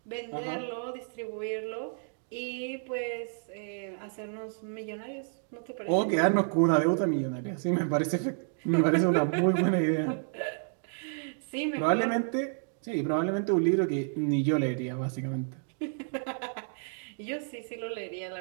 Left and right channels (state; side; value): silent; left; digital silence